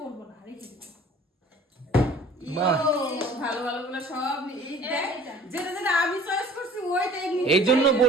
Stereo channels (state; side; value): normal; both; correlation 0.49